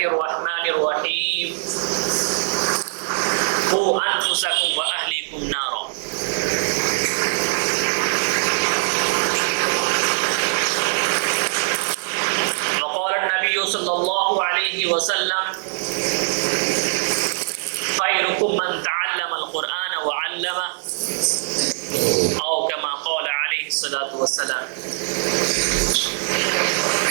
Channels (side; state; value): left; silent; 64 dB below the other